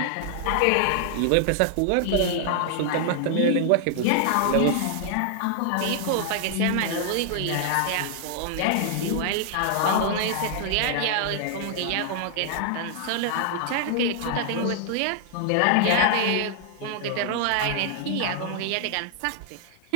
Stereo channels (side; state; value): both; different; correlation 0.00